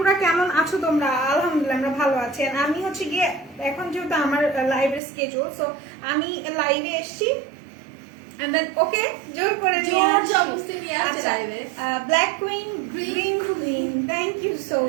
কেমন আছো তোমরা? আলহামদুলিল্লাহ আমরা ভালো আছি। আমি হচ্ছে গিয়ে এখন যেহেতু আমার লাইভের স্কেজুল, সো আমি লাইভে এসছি ওকে জোর করে black queen green queen, thank you so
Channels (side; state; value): left; drops out; at 5.0 s